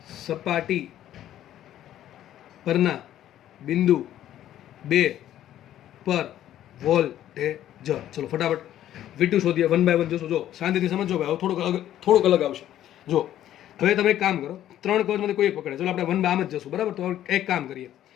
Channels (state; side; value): quieter; right; 12.1 dB